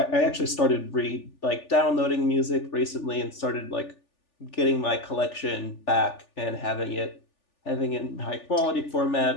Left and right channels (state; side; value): late; right; 3.4 ms